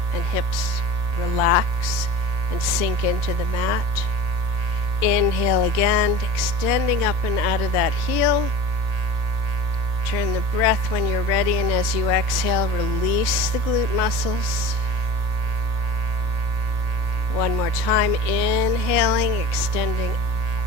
and hips relax and sink into the mat. Inhale again, extending up and out of that heel. Turn the breath when you're ready, and as you exhale, release the glute muscles. One more time, inhaling, extending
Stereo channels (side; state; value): left; late; 1.8 ms